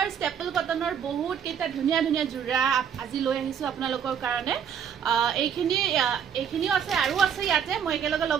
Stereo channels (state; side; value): quieter; left; 8.0 dB